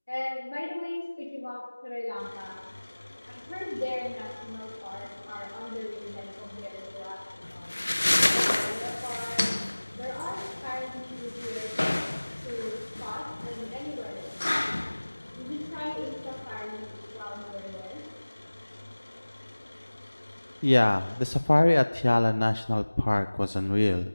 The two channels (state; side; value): inverted; both; correlation -1.00